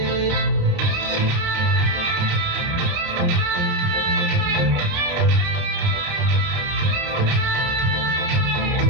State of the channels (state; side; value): late; left; 29 ms